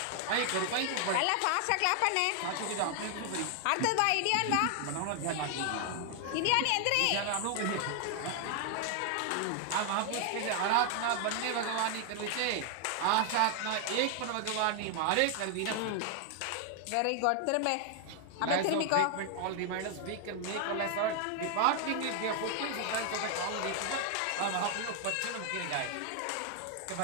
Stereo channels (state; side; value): different; both; correlation 0.00